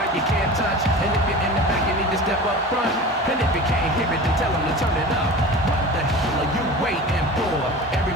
you can't touch. And if you're in the back, you need to step up front. And if you can't hear it, then tell him to turn it up. What the hell are you waiting for?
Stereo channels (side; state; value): both; normal; correlation 0.35